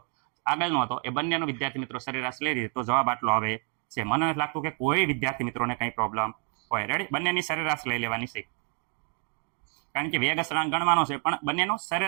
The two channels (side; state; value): left; quieter; 39.7 dB